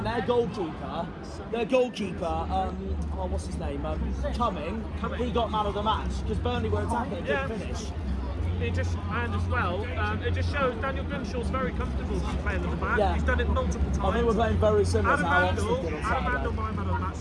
their goalkeeper, what's his name, Cumming, he got man of the match because Burnley were attacking and Yeah. couldn't finish. It just shows Daniel Grimshaw's very comfortable playing at the back. Yeah. He's done it multiple times. I think we're playing very similar Adam to how Oxford did on Handel, Saturday. my man of the match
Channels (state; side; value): identical; both; correlation 1.00